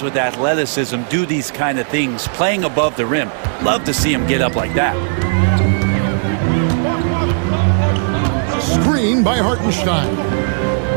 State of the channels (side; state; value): left; silent; digital silence